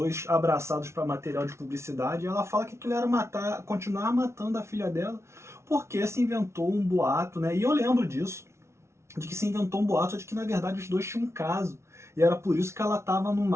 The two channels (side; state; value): left; late; 0.13 ms